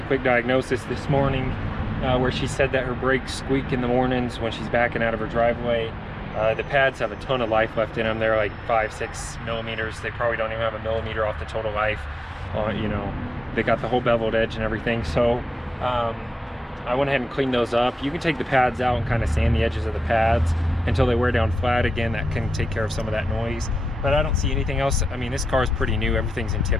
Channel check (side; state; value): both; normal; correlation 0.92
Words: quick diagnosis this morning where she said that her brakes squeak in the mornings when she's backing out of her driveway. The pads have a ton of life left in them. They're like 5-6 millimeters. They probably don't even have a millimeter off the total life. You know, they got the whole beveled edge and everything. So I went ahead and cleaned those up. You can take the pads out and kind of sand the edges of the pads until they wear down flat again. That can take care of some of that noise, but I don't see anything else. I mean, this car is pretty new. Everything's in